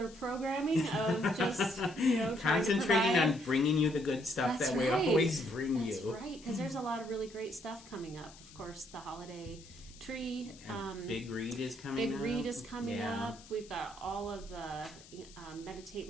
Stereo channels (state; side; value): noise; left; hiss, 21 dB below the sound